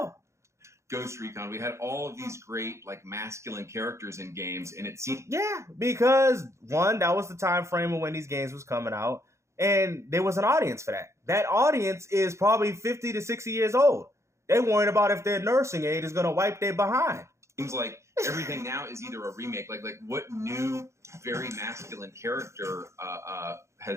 Ghost Recon. We had all of these great like masculine characters in games, and it seemed because one, that was the time frame of when these games was coming out, and there was an audience for that. That audience is probably 50 to 60 years old. They worried about if their nursing aid is going to wipe their behind. Seems like everything now is either a remake. Like what new, very masculine character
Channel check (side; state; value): left; late; 0.14 ms